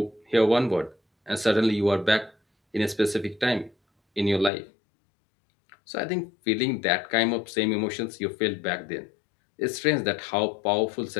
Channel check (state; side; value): drops out; right; at 4.5 s